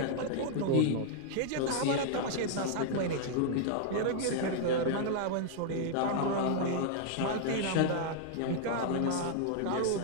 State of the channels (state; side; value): different; both; correlation -0.01